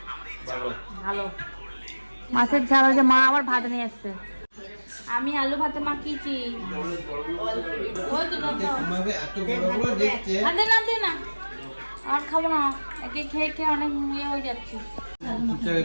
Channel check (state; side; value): inverted; both; correlation -1.00